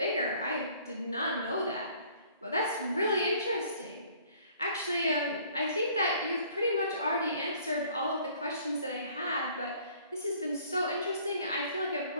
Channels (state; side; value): inverted; both; correlation -0.57